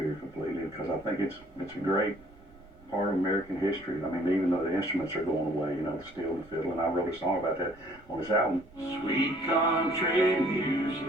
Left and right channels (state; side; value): noise; right; rumble, 24 dB below the sound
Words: completely because I think it's a great part of American history. I mean, even though the instruments are going away, you know, the steel and the fiddle, and I wrote a song about that on this album. Sweet country music,